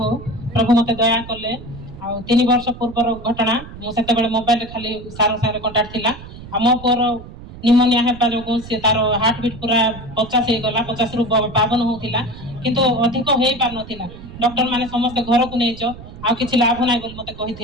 ହଉ। ପ୍ରଭୁ ମତେ ଦୟା କଲେ ଆଉ 3 ବର୍ଷ ପୂର୍ବର ଘଟଣା ମୁଁ ସେତେବେଳେ ମୋବାଇଲରେ ଖାଲି ସାର୍ ସାଙ୍ଗରେ କଣ୍ଟାକ୍ଟ ଥିଲା ଆଉ ମୋ ପୁଅର ନିମୋନିଆ ହେବା ଯୋଗୁଁ ସେ ତାର ହାର୍ଟ ବିଟ୍ ପୁରା 50 ହେଇଗଲା 50ରୁ 52 ହଉଥିଲା କିନ୍ତୁ ଅଧିକ ହେଇପାରୁନଥିଲା ଡକ୍ଟର ମାନେ ସମସ୍ତେ ଘରକୁ ନେଇଛ ଆଉ କିଛି ଲାଭ ନାହିଁ ବୋଲି ମତେ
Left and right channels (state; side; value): noise; right; rumble, 15 dB below the sound